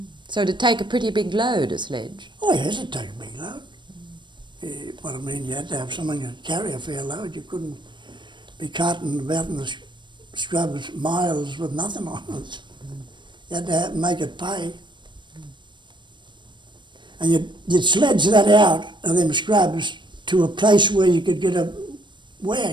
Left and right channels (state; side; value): late; left; 0.22 ms